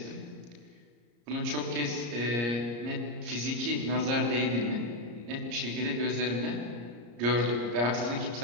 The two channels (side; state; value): left; late; 34 ms